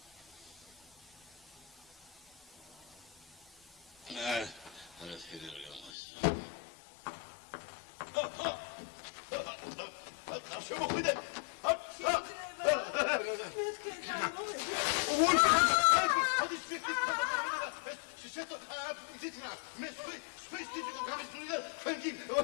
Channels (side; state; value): right; drops out; at 5.9 s